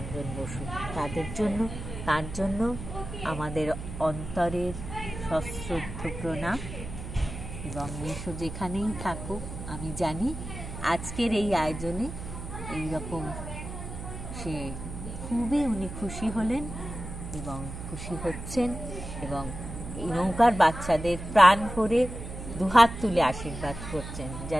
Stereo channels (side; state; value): right; noise; hum, 9 dB below the sound